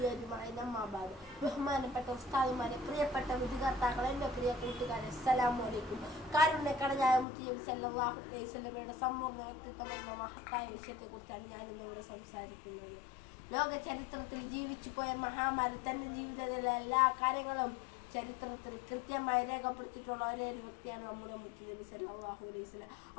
അജ്മഈൻ അമ്മാ ബഅദ്. ബഹുമാനപ്പെട്ട ഉസ്താദുമാരെ, പ്രിയപ്പെട്ട വിദ്യാർത്ഥികളെ, എൻ്റെ പ്രിയ കൂട്ടുകാരെ, അസ്സലാമു അലൈക്കും. കാരുണ്യക്കടനായ മുത്തുനബി സല്ലല്ലാഹു അലൈഹി വസല്ലമയുടെ സമ്പൂർണ്ണ വ്യക്തിത്വം എന്ന മഹത്തായ വിഷയത്തെക്കുറിച്ചാണ് ഞാനിന്നിവിടെ സംസാരിക്കുന്നത്. ലോക ചരിത്രത്തിൽ ജീവിച്ചു പോയ മഹാമാരി തൻ്റെ ജീവിതത്തിലെ എല്ലാ കാര്യങ്ങളും ചരിത്രത്തിൽ കൃത്യമായി രേഖപ്പെടുത്തിയിട്ടുള്ള ഒരേ ഒരു വ്യക്തിയാണ് നമ്മുടെ മുത്തുനബി സല്ലല്ലാഹു അലൈഹി വസല്ലം.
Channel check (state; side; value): drops out; right; at 7.2 s